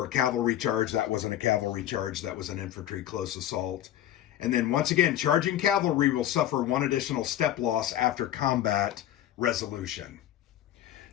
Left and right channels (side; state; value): right; quieter; 12.2 dB